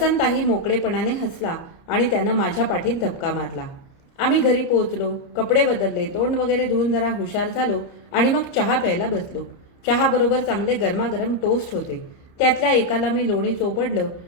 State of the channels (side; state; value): right; late; 30 ms